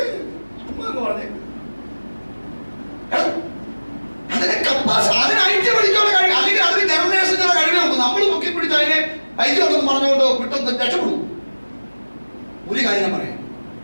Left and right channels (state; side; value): inverted; both; correlation -1.00